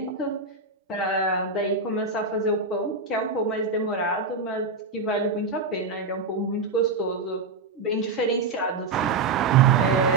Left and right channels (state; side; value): quieter; left; 4.0 dB